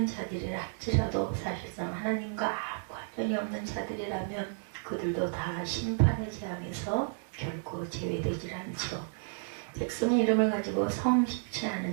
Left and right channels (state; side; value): silent; left; digital silence